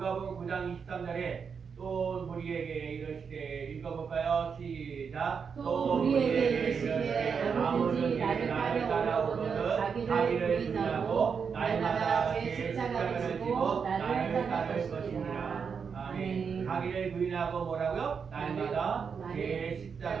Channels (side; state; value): left; quieter; 6.2 dB